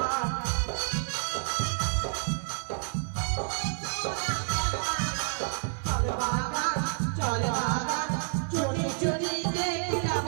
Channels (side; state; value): left; silent; 58 dB below the other